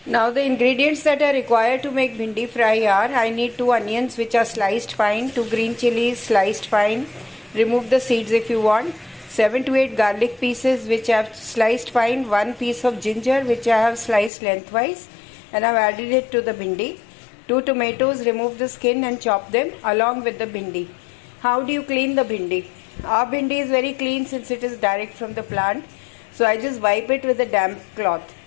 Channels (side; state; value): right; drops out; at 14.3 s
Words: Now the ingredients that are required to make bhindi fry are: I need 2 onions which are sliced fine, 2 green chilies sliced fine, remove the seeds if you want, 7 to 8 garlic pieces which I have sliced fine, 1 piece of ginger which I have sliced lengthwise and I have added it to the bhindi, 2 tomatoes, remove the skin and chop them along with the bhindi. How do you clean the bhindi? Our bhindi is very clean since it is direct from the plant, so I just wipe it with a damp cloth.